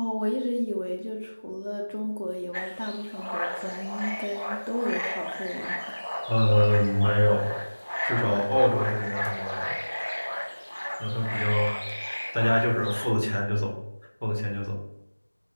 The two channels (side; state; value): both; inverted; correlation -1.00